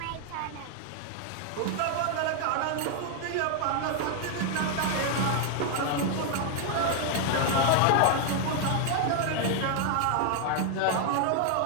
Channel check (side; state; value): both; different; correlation 0.00